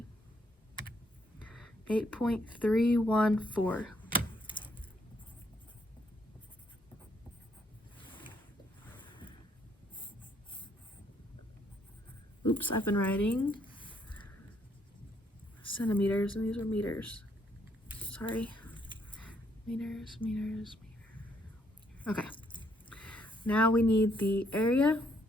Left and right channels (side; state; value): both; normal; correlation 0.71